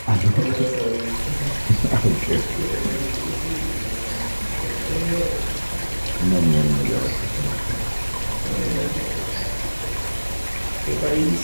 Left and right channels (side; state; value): both; inverted; correlation -1.00